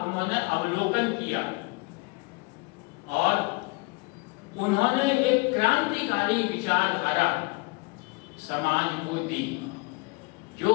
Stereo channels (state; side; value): quieter; right; 27.3 dB